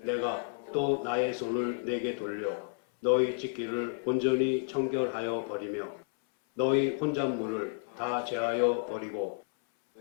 또 나의 손을 내게 돌려 너희 짓기를 온전히 청결하여 버리며 너희 혼잣물을 다 제하여 버리고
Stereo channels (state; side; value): silent; right; 57 dB below the other